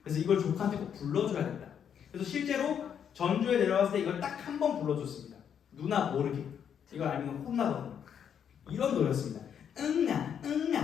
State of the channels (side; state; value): right; quieter; 8.3 dB